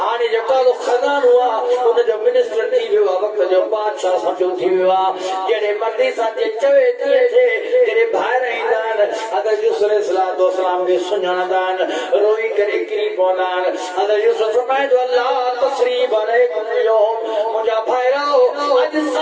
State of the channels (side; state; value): both; identical; correlation 1.00